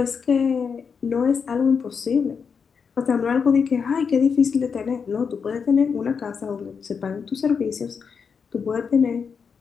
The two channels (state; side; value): quieter; right; 6.1 dB